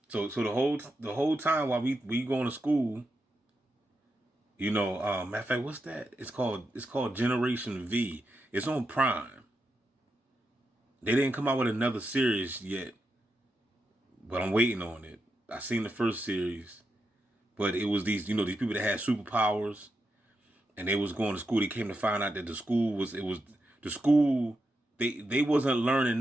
So the whole time while we going to school, Matter of fact, what's that? It's called Generation V. It's on Prime. They didn't come out with another series yet, but I'm waiting on it. I seen the first series, but it was these people that had superpowers, and they was going to school. They came to find out that the school. They wasn't learning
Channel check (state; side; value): normal; both; correlation 0.86